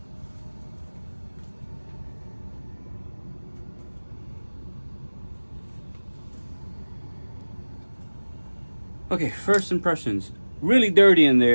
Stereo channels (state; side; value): inverted; both; correlation -1.00